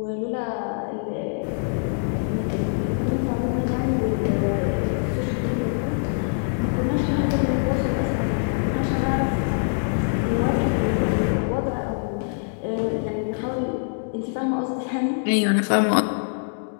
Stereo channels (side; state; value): right; silent; digital silence